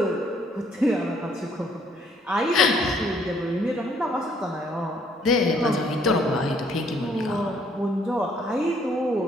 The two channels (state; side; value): normal; both; correlation 0.65